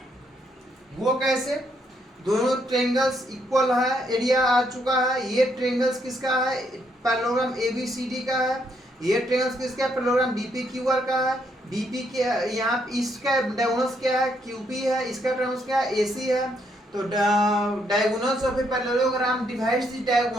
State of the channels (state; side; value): normal; both; correlation 0.74